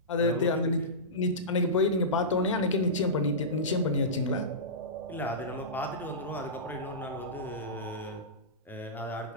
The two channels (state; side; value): normal; both; correlation -0.18